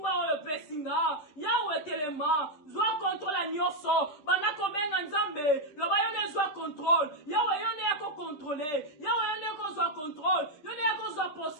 ou le pesinga, Yahweh Telema, soit contre la nyoso, bana kobenga nzambe, le bayone soit contrôle, Yahweh yone yako contrôler, Yahweh yone yako soit contrôle, yone yako soit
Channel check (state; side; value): late; right; 10 ms